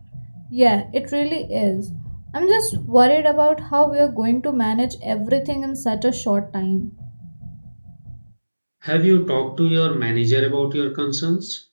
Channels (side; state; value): both; inverted; correlation -1.00